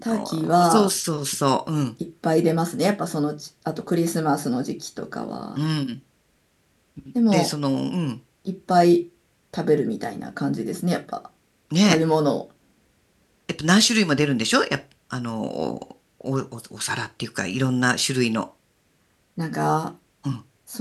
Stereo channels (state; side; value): identical; both; correlation 1.00